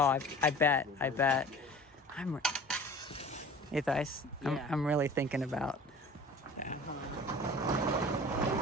I bet. Hey, Thais, Yeah. I'm really thinking about.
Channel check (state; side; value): normal; both; correlation 0.43